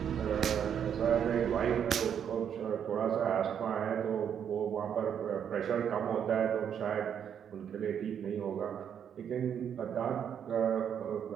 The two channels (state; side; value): quieter; left; 8.4 dB